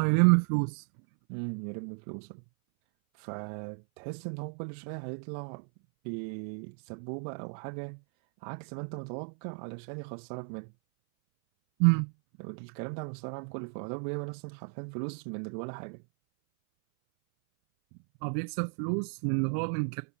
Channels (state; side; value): silent; left; 55 dB below the other